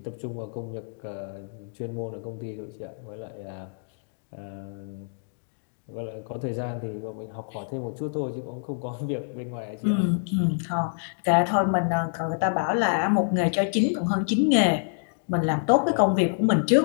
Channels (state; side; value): silent; right; digital silence